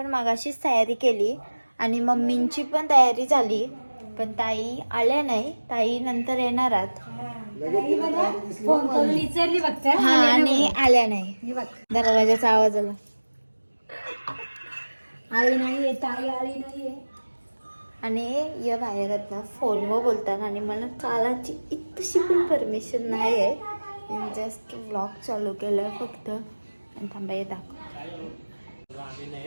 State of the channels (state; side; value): inverted; both; correlation -1.00